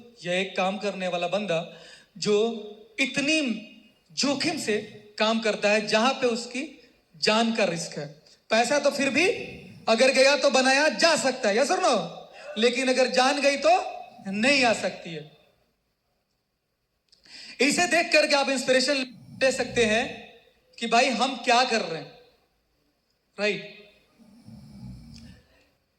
या एक काम करने वाला बंदा जो इतनी जोखिम से काम करता है जहां पे उसकी जान का रिस्क है। पैसा तो फिर भी अगर गया तो बनाया जा सकता है, यस और नो, लेकिन अगर जान गई तो नहीं आ सकती है। इसे देख करके आप इंस्पिरेशन ले सकते हैं कि भाई हम क्या कर रहे हैं, राइट।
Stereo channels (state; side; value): identical; both; correlation 1.00